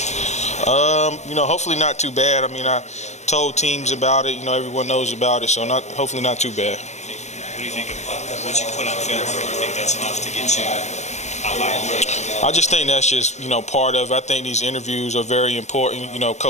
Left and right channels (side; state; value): right; late; 0.33 ms